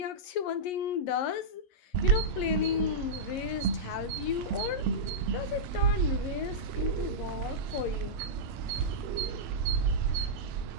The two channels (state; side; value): late; right; 11 ms